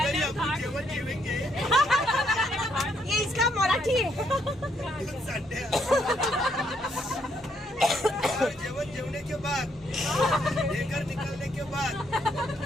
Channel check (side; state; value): both; normal; correlation 0.73